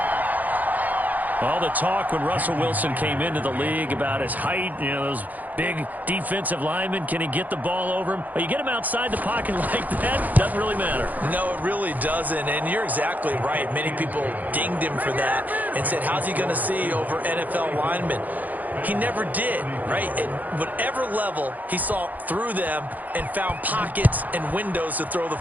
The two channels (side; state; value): left; late; 0.081 ms